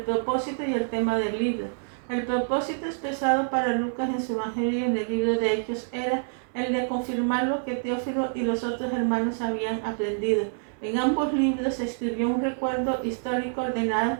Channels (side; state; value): left; silent; 60 dB below the other